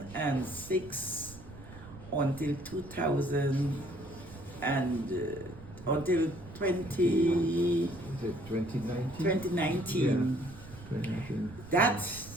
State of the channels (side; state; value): right; noise; rumble, 16 dB below the sound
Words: until 2000 and until 2019. Is it 2019? 2019. Yeah. 2019. That